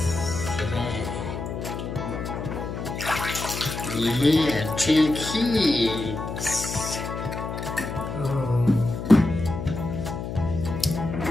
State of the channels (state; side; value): noise; left; hum, 6 dB below the sound